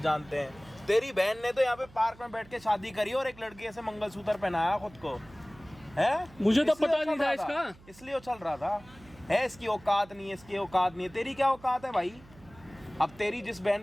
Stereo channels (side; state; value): right; noise; hum, 23 dB below the sound